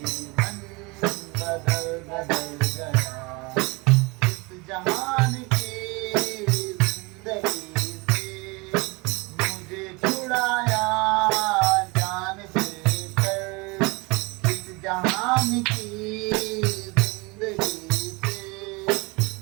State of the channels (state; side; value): quieter; left; 26.7 dB